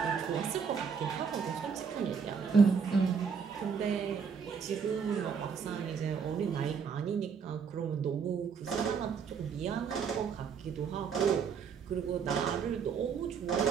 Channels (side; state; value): left; quieter; 6.3 dB